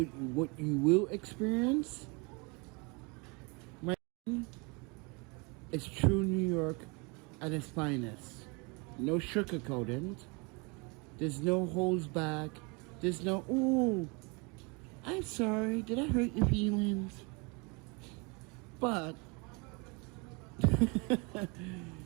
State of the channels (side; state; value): left; quieter; 30.0 dB